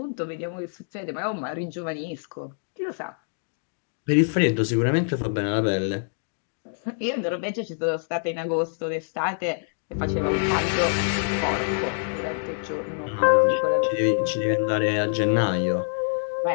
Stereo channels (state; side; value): silent; right; digital silence